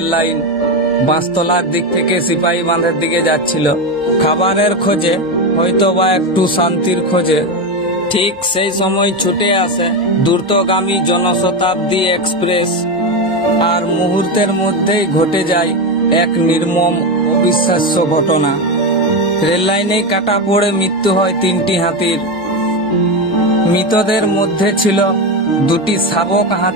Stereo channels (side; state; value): both; normal; correlation 0.14